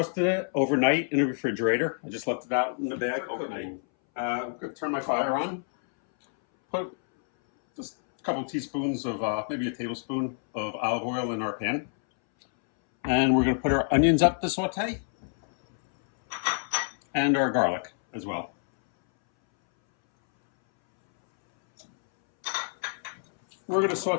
it overnight in the refrigerator. I just left it out in the bag overnight. I'm going to turn my fire on. Put just a couple teaspoons of, maybe a tablespoon of olive oil in our pan. And we're going to put our onions up to saute. And our garlic as well. We're going to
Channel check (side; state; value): right; silent; 60 dB below the other